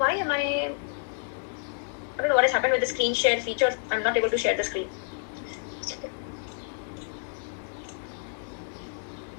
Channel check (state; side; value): silent; right; digital silence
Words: am I don't know what has happened with the screen share feature. I'm not able to share the screen.